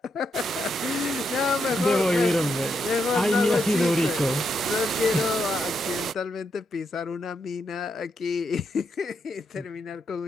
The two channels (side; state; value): both; normal; correlation 0.81